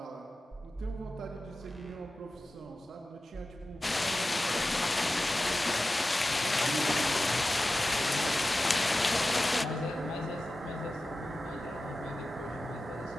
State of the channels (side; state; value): both; normal; correlation 0.94